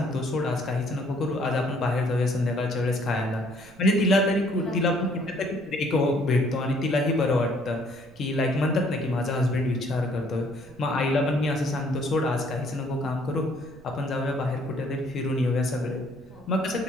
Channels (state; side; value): noise; right; rumble, 24 dB below the sound